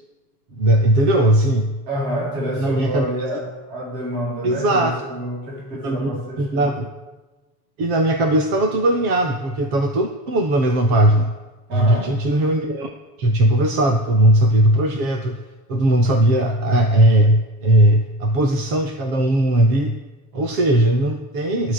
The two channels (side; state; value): left; late; 7.1 ms